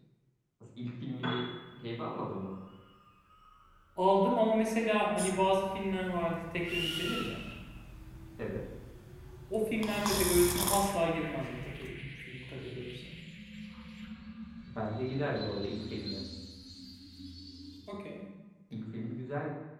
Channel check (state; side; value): identical; both; correlation 1.00